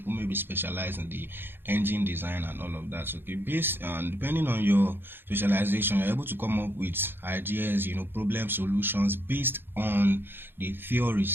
may be specialized in the engine design and all of that. So, okay, based on depending on your specialization, you're able to come up with ideas, problem solutions based on the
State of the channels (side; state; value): left; late; 0.10 ms